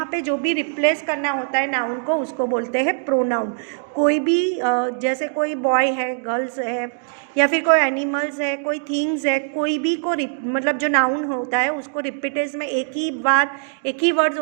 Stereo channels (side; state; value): left; silent; digital silence